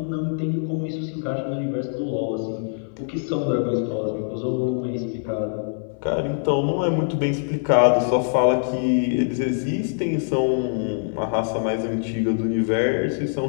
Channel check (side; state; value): right; silent; 63 dB below the other